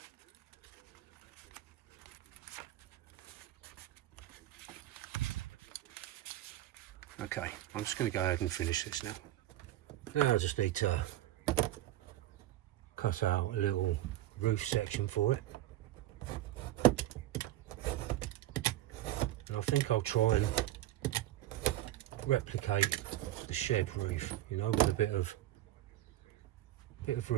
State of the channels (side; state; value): left; quieter; 14.4 dB